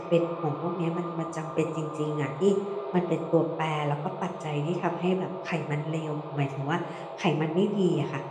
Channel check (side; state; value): both; identical; correlation 1.00